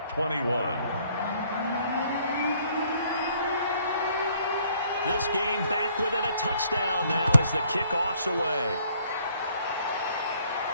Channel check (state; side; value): inverted; both; correlation -0.63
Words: 21. This game back within a touchdown now as the kickoff's away.